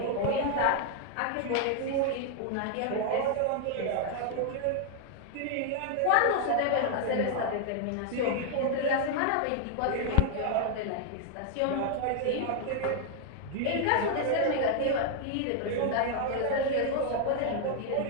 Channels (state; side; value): different; both; correlation 0.00